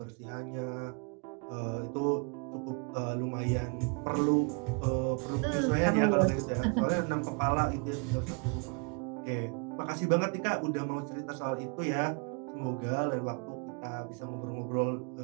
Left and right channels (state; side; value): quieter; left; 34.8 dB